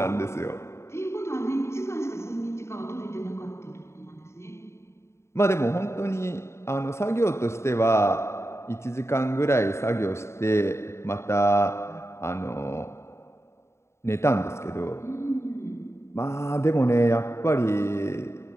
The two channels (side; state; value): right; late; 0.13 ms